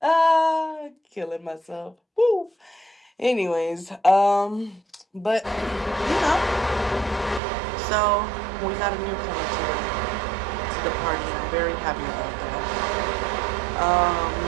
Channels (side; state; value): left; drops out; at 7.4 s